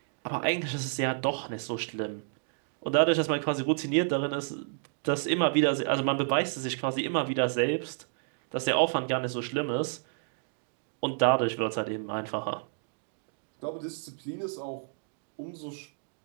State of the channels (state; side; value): silent; left; digital silence